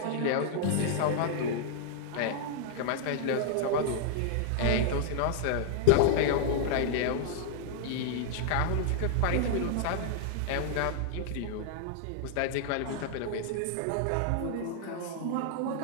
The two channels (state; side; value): different; both; correlation -0.01